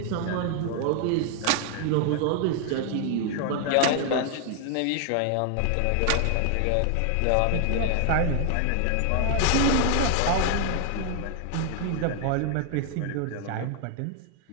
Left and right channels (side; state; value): both; different; correlation 0.00